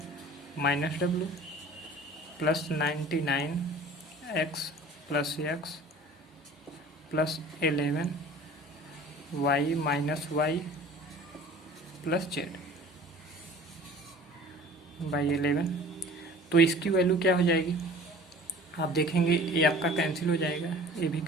- W + 99 X + X + 11 Y - Y + Z / 11। तो इसकी वैल्यू क्या हो जाएगी, आप देखेंगे ये आपका कैंसिल हो जाएगा, ये भी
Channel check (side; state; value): both; normal; correlation 0.45